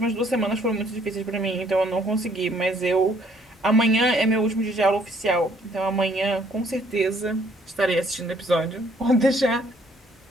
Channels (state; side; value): normal; both; correlation 0.63